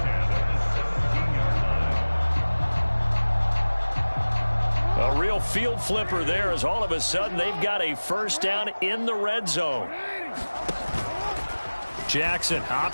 A real field flipper there as all of a sudden they've got a first down in the red zone. Jackson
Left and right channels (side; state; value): both; inverted; correlation -1.00